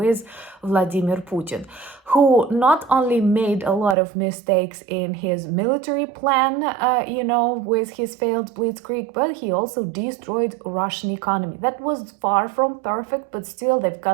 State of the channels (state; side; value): drops out; left; at 4.0 s